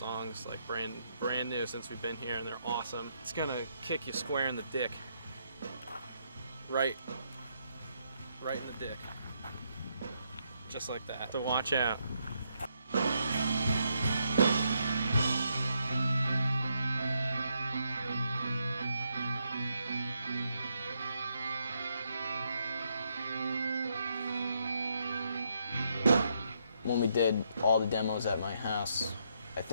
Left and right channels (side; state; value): both; inverted; correlation -0.76